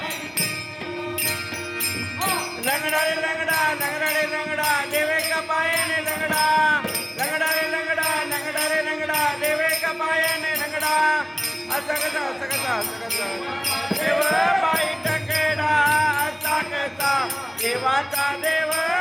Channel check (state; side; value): identical; both; correlation 1.00